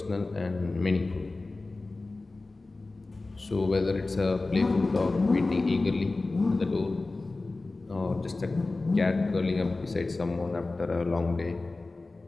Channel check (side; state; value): right; quieter; 3.3 dB